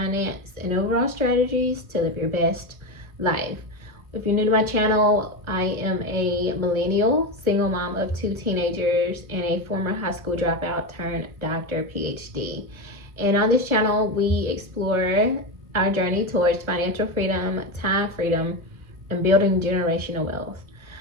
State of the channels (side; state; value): left; late; 1.5 ms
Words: and overall strategies to live your best life. If you're new to my channel, I am a millennial, single mom of 2 teenagers, and a former high school dropout turned doctor PhD. And on this channel, we explore our journey towards financial freedom, time freedom, and building generational wealth.